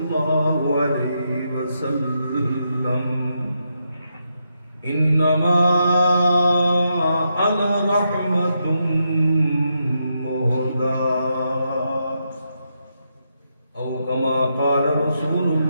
عليه وسلم إنما أنا رحمة مهداة أو كما قال رسول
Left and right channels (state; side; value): inverted; both; correlation -0.82